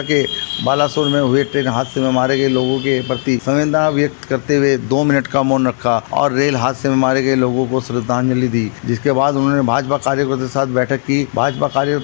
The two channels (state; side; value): silent; right; digital silence